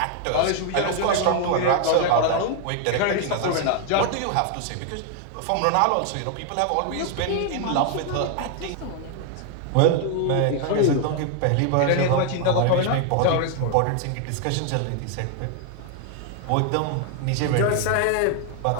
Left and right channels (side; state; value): both; different; correlation 0.00